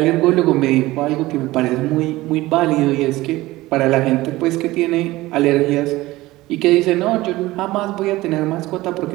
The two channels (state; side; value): quieter; left; 18.4 dB